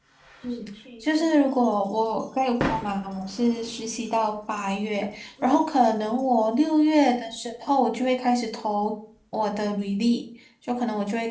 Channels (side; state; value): both; identical; correlation 1.00